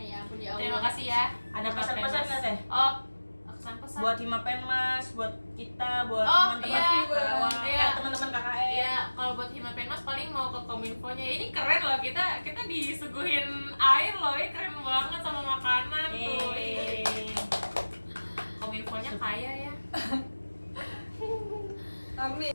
ya ampun ya Allah. Terima kasih ya. Ada pesan-pesan nggak Teh? Oh, pesan-pesan. Buat Himapenmas, buat kita, buat Oh, teman-teman iya. Karawang, Iya. teman-teman KKN. Iya, kalau buat Himapenmas paling mau ke Kominfo-nya. Ini keren loh, kita disuguhin air loh, ini keren banget sama makanan tuh. Eh, Kominfo-nya kaya ya. Amin.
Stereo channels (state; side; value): inverted; both; correlation -1.00